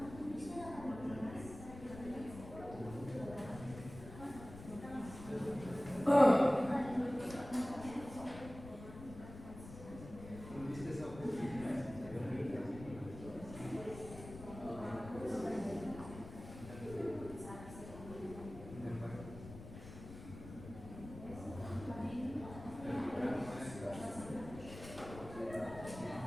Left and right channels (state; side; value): noise; left; rumble, 13 dB below the sound